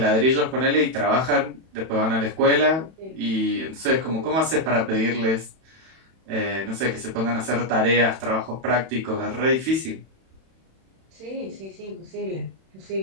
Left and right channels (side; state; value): left; late; 31 ms